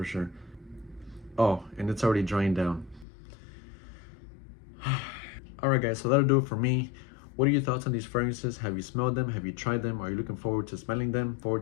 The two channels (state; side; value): drops out; right; at 3.1 s